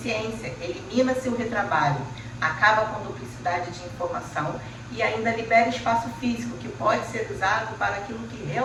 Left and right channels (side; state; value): both; identical; correlation 1.00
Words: elimina-se o retrabalho, acaba com duplicidade de informação e ainda libera espaço físico que pode ser usado para aquilo que